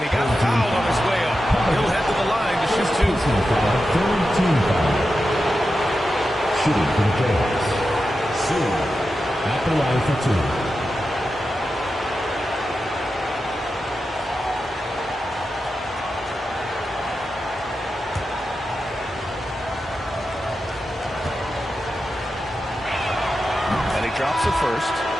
he got fouled on his way up. He'll head to the line to shoot 2. Third team foul. Shooting for the Jayhawks. Sue at the line for 2. And he drops it first.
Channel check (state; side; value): normal; both; correlation 0.90